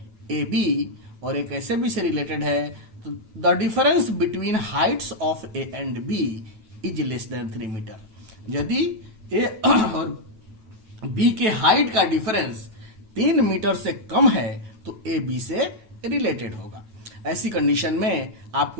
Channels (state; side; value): late; left; 9.3 ms